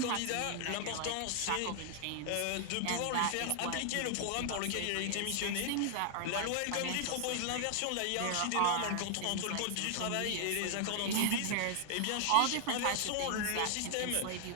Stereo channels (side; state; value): both; different; correlation 0.00